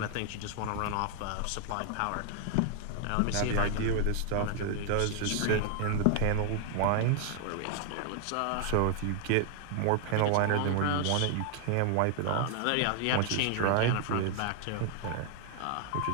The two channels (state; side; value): different; both; correlation 0.00